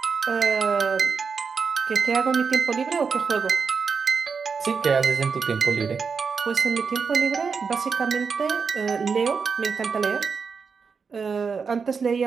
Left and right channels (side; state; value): left; quieter; 5.5 dB